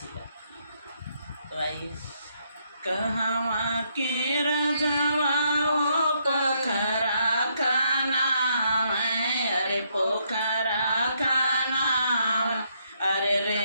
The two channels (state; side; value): inverted; both; correlation -0.74